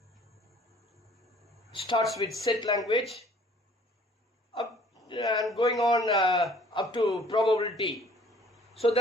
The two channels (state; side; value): normal; both; correlation 0.55